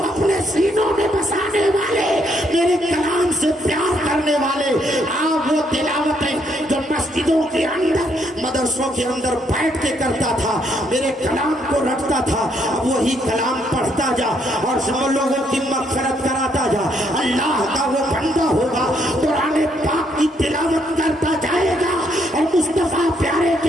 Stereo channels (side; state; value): both; normal; correlation 0.72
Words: اپنے سینوں میں بسانے والے, میرے کلام سے پیار کرنے والے, آپ وہ تلاوتیں جو مسجدوں کے اندر مدرسوں کے اندر بیٹھ کے کرتا تھا میرے کلام کو رکھتا تھا, اب وہی کلام پڑھتا جا اور سب لوگوں کی مغفرت کراتا جا. اللہ کا وہ بندہ ہوگا قرآن پاک کی تلاوت کرتا جائے گا اور مصطفیٰ پیارے